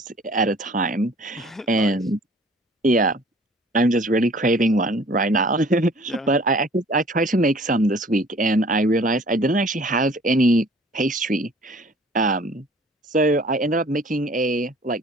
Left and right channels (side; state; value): both; normal; correlation 0.51